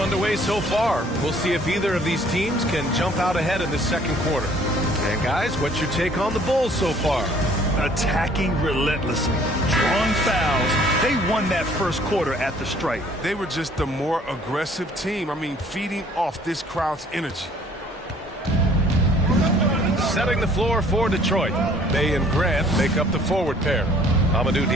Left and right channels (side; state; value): both; normal; correlation 0.57